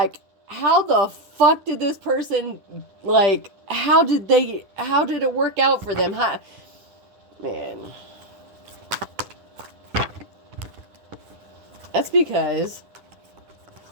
how the fuck did this person, like, how did it work out for them? Man. That's because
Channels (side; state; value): left; late; 9.9 ms